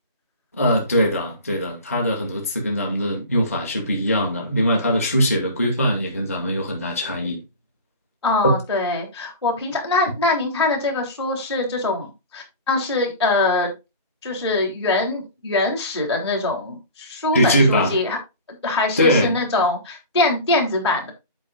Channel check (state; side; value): inverted; both; correlation -0.32